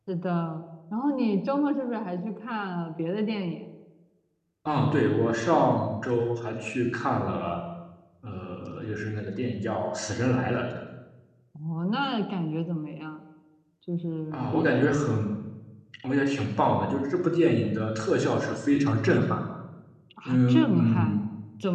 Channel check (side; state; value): both; identical; correlation 1.00